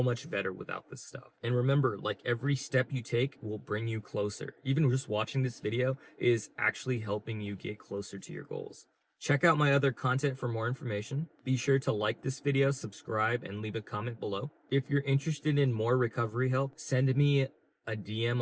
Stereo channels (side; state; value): both; identical; correlation 1.00